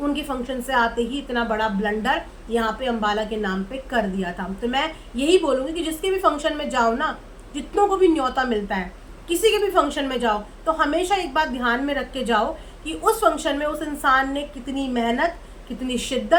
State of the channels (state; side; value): identical; both; correlation 1.00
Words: उनके फंक्शन से आते ही इतना बड़ा ब्लंडर यहाँ पे अंबाला के नाम पे कर दिया था। तो मैं यही बोलूँगी कि जिसके भी फंक्शन में जाओ ना, जितनों को भी न्योता मिलता है, किसी के भी फंक्शन में जाओ, तो हमेशा एक बात ध्यान में रख के जाओ कि उस फंक्शन में उस इंसान ने कितनी मेहनत, कितनी